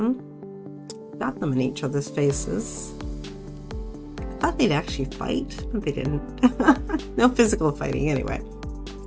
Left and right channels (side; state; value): both; identical; correlation 1.00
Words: Got them in each other's faces. I thought they'd actually fight, but they didn't. No physical fighting anyway.